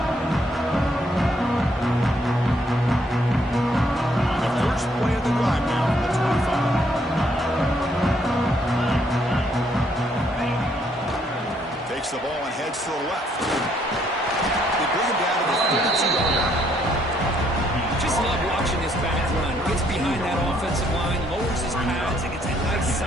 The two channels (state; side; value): normal; both; correlation 0.70